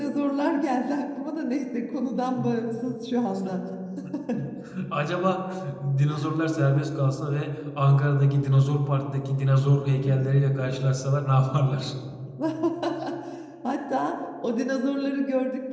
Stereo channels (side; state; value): both; identical; correlation 1.00